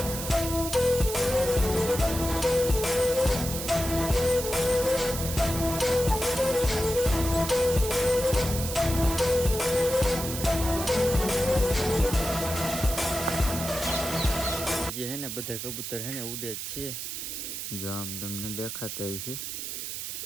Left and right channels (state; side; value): noise; right; hiss, 6 dB below the sound